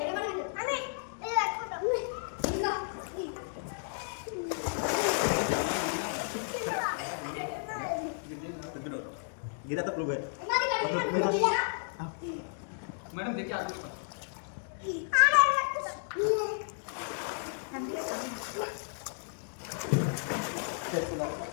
गिरा तो प्रूव है मैडम देखिए आप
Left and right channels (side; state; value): right; silent; digital silence